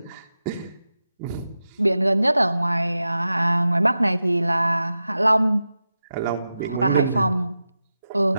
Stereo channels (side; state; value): both; inverted; correlation -0.92